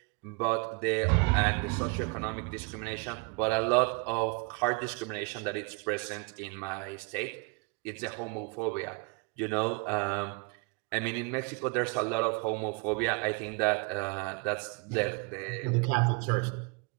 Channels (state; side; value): quieter; left; 32.8 dB